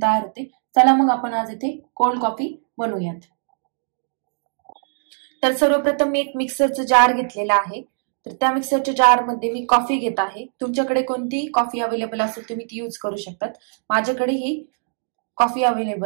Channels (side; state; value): left; silent; digital silence